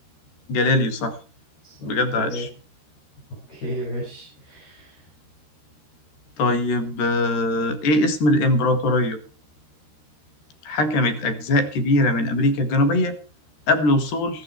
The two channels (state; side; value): late; right; 13 ms